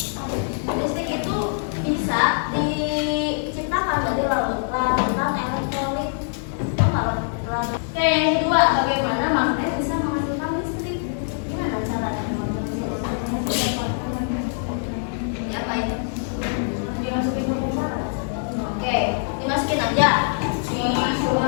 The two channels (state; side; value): silent; right; digital silence